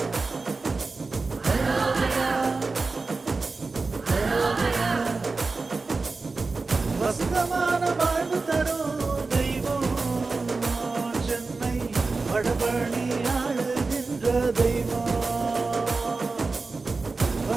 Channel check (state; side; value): quieter; left; 3.9 dB